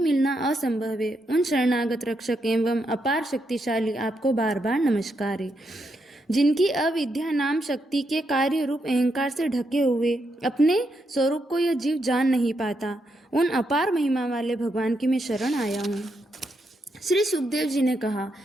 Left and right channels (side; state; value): both; normal; correlation 0.81